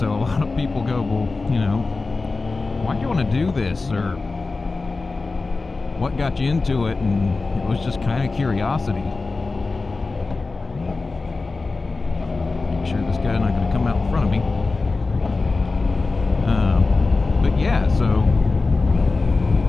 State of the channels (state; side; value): quieter; right; 3.7 dB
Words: a lot of people go, well, you know, why'd you want to do this, or what got you into it? And it was just kind of curiosity. Make sure this guy's not going to come out in front of me. But yeah, so